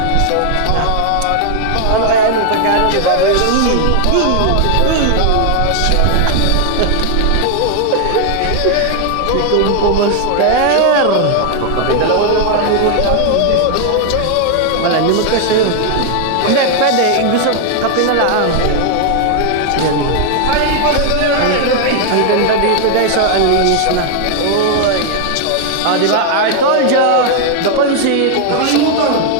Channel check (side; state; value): both; different; correlation 0.00